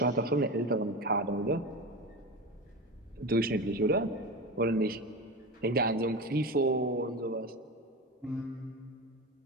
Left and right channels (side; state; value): both; normal; correlation 0.25